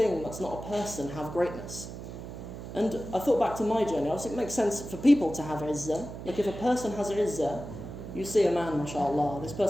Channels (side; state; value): right; noise; hum, 10 dB below the sound